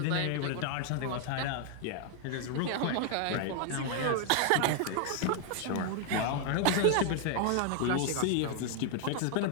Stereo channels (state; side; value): different; both; correlation 0.00